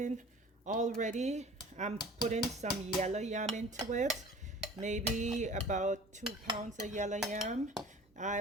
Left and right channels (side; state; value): both; normal; correlation 0.45